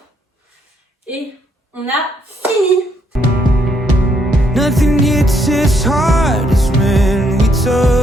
et on a fini. Nothing hits as hard as when we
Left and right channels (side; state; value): both; normal; correlation 0.72